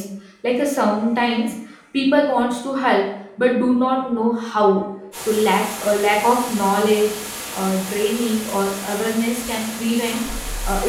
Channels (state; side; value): identical; both; correlation 1.00